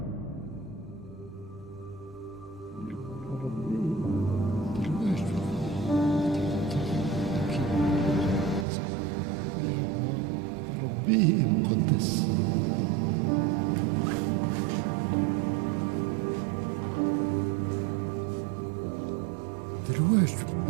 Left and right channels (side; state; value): left; drops out; at 8.7 s